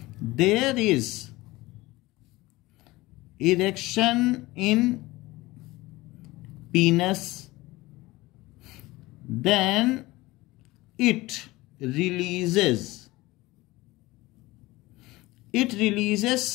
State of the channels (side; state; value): right; quieter; 19.8 dB